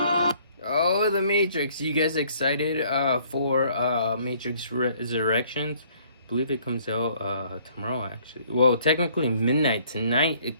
Oh, The Matrix. You guys excited for Matrix Resurrections? I believe it comes out tomorrow, actually. Well, technically midnight tonight it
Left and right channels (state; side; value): inverted; both; correlation -0.61